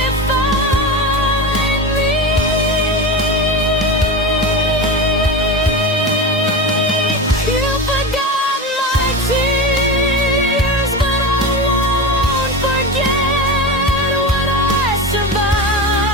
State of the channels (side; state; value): both; normal; correlation 0.24